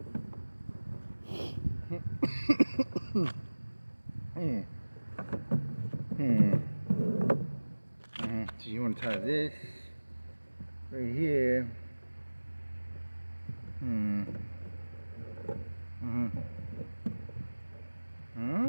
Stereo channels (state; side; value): inverted; both; correlation -1.00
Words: So you want to tie this right here.